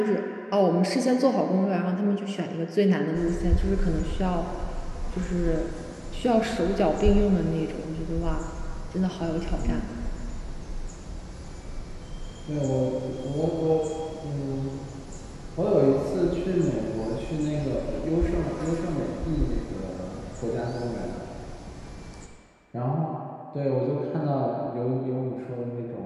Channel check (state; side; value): identical; both; correlation 1.00